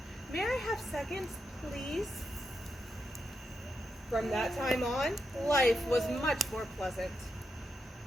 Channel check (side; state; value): both; normal; correlation 0.85